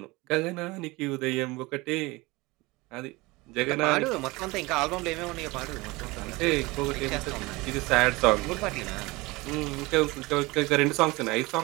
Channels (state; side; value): quieter; left; 22.6 dB